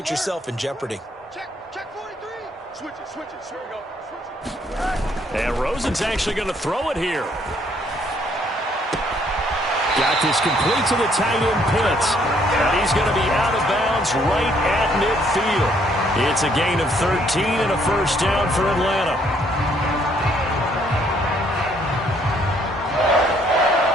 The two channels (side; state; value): both; normal; correlation 0.67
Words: yourself in jeopardy. Check 43. Switch it. Here we go. Switch it. And Rosen's actually going to throw it here. Got this complete to the tight end Pitts. And he's going to be out of bounds right at midfield. It's a gain of 13 and a first down for Atlanta.